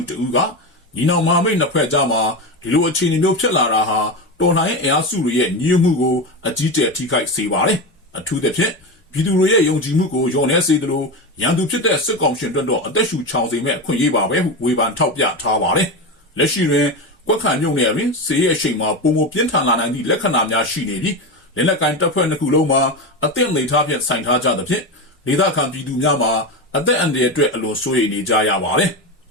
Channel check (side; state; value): both; normal; correlation 0.18